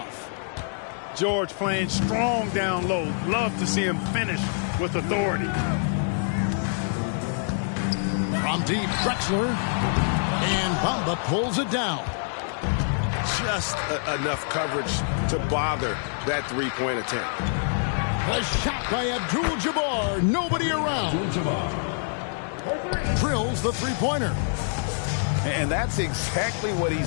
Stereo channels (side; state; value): right; silent; digital silence